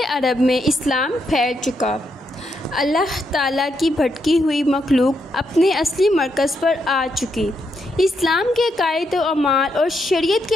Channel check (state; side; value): normal; both; correlation 0.80